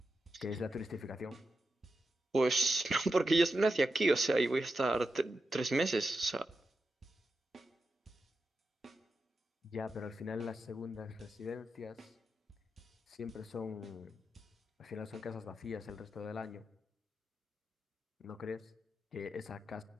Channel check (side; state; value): both; normal; correlation 0.89